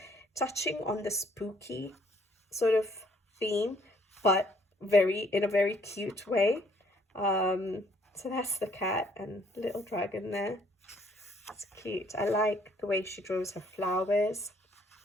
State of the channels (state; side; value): normal; both; correlation 0.64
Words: touching on the spooky sort of theme, but in a very cute way. So that's the cat and little dragon there. It's cute. I like the way she draws her flowers.